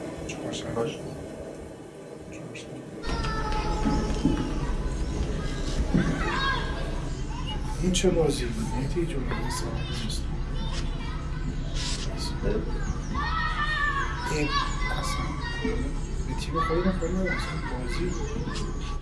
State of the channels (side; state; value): both; identical; correlation 1.00